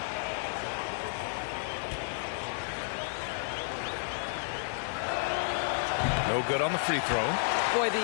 No good on the free throw. Boy,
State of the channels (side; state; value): right; silent; digital silence